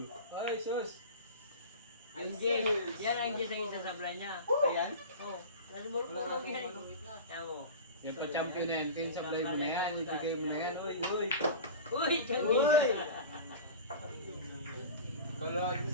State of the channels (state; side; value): inverted; both; correlation -0.32